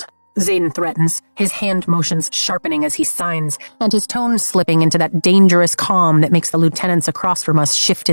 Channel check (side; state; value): both; inverted; correlation -1.00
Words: Xaden threatens, his hand motions sharpening as he signs, and his tone slipping into that dangerous calm that makes the lieutenants across from us shift